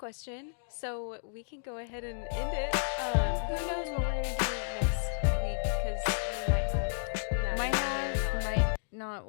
so we can go ahead and end it. Who knows what we're gonna do next week? Because we might have, might not.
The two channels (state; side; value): silent; right; digital silence